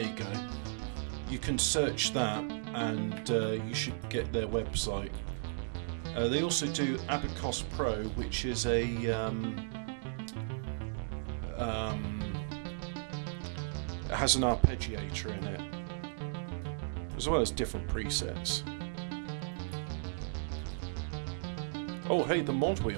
you go. You can search that and you should get their website. They also do Abacus Pro, which is a it has an arpeggiator in it, as well as different presets. Oh hey, the mod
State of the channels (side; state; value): left; silent; digital silence